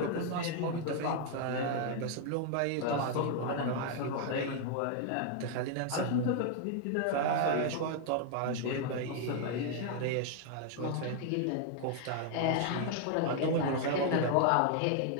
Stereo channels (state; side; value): different; both; correlation 0.00